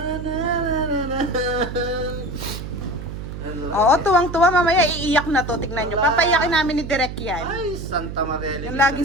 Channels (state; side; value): noise; right; hum, 8 dB below the sound